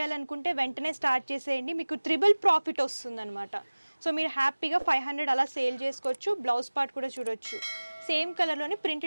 వెంటనే స్టార్ట్ చేసేయండి మీకు ట్రిపుల్ ప్రాఫిట్ వస్తుంది అనమాట సో మీరు హ్యాపీగా 500 అలా సేల్ చేసుకోవచ్చు బ్లౌజ్ పార్ట్ కూడా చూడొచ్చు సేమ్ కలర్ లోనే ప్రింట్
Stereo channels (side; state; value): both; inverted; correlation -1.00